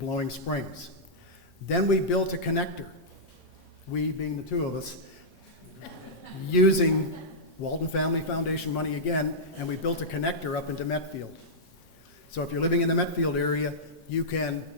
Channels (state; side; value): normal; both; correlation -0.11